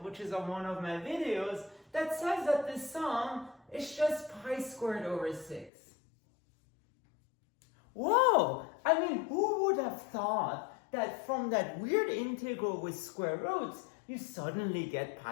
which is on one of my videos, that says that the sum is just pi squared over 6. Whoa! I mean, who would have thought that from that weird integral with square roots, you suddenly get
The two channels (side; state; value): right; drops out; at 5.7 s